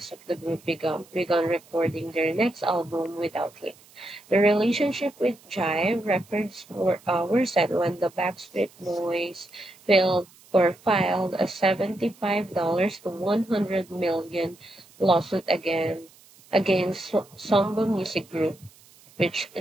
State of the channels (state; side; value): noise; right; hiss, 26 dB below the sound